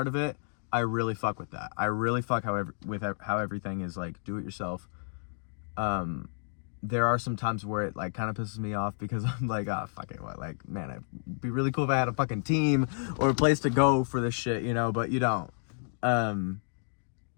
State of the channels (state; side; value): silent; right; digital silence